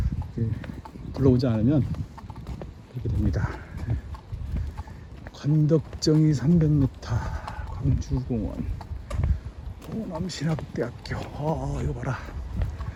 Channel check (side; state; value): both; identical; correlation 1.00